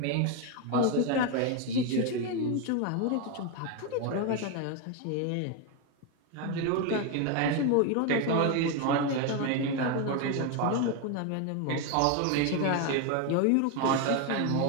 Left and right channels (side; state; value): both; different; correlation 0.02